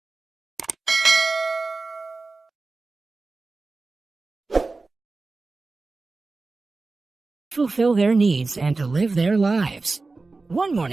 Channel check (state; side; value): quieter; left; 3.7 dB